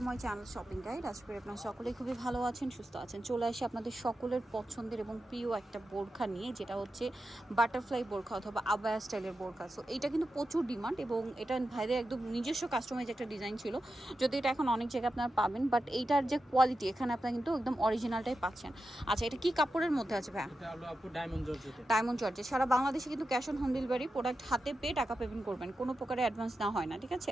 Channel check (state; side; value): normal; both; correlation 0.90